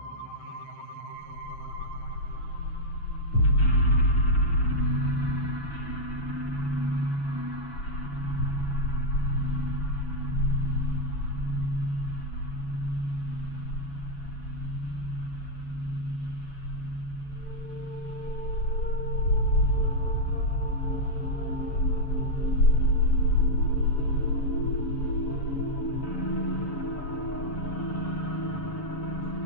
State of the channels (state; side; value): late; right; 7.1 ms